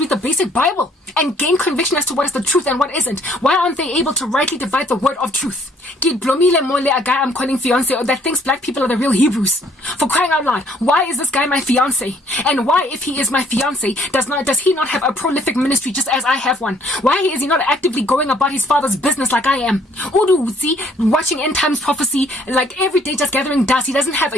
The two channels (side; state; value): both; normal; correlation 0.62